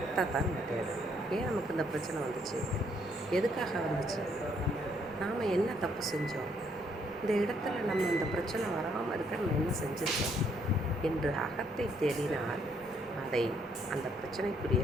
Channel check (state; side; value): noise; right; rumble, 28 dB below the sound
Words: தான் நம்ம தேடுறோம். ஏன் நமக்கு இந்த பிரச்சனை வந்துச்சு? எதுக்காக வந்துச்சு? நாம் என்ன தப்பு செஞ்சோம்? இந்த இடத்துல நம்ம இந்த பிரச்சனை வராமல் இருக்க நம்ம என்ன செஞ்சுருக்கோம் என்று அகத்தை தேடினால் அந்த பிரச்சனைக்குரிய